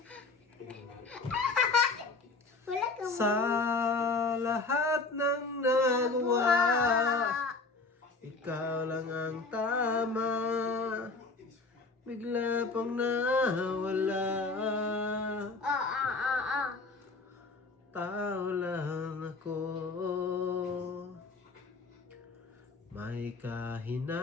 Wala ka mo. Sa lahat ng nagawa, ikaw lang ang tama. Bigla pang nawala. Tao lang ako. May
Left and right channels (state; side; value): quieter; right; 3.8 dB